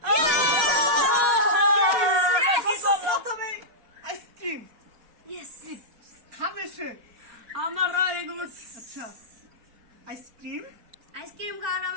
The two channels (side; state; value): left; late; 4.2 ms